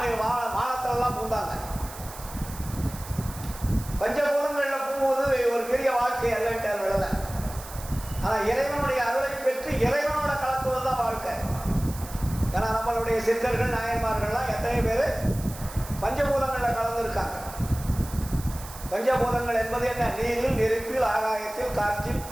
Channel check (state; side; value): noise; right; hiss, 15 dB below the sound